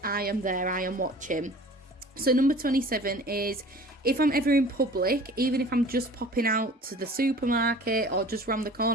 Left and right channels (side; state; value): both; normal; correlation 0.45